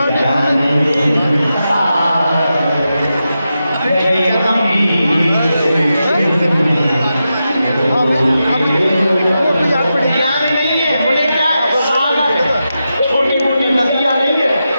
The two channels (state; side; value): inverted; both; correlation -0.89